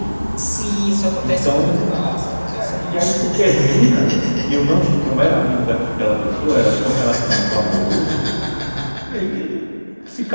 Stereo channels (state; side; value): inverted; both; correlation -1.00